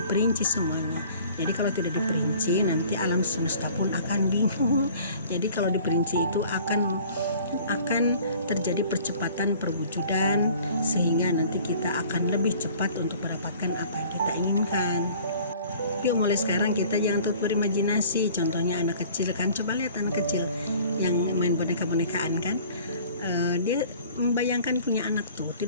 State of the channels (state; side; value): inverted; both; correlation -0.50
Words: semuanya. Jadi kalau tidak diperinci nanti alam semesta pun akan bingung. Jadi kalau diperinci itu akan terjadi percepatan perwujudan, sehingga nanti kita akan lebih cepat untuk mendapatkan apa yang kita inginkan. Yuk mulai sekarang kita jangan tutup berimajinasi. Contohnya anak kecil kan, coba lihat anak kecil yang main boneka-bonekaan kan, dia membayangkan punya anak tuh,